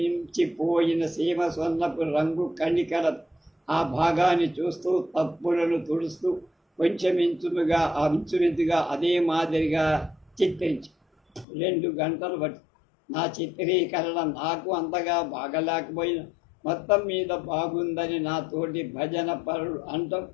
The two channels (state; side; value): drops out; right; at 11.5 s